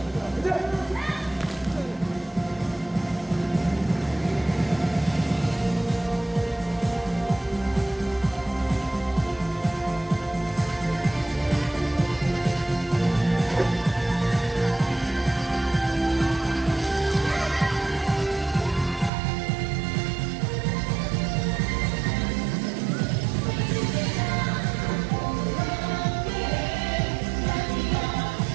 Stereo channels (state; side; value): drops out; left; at 19.1 s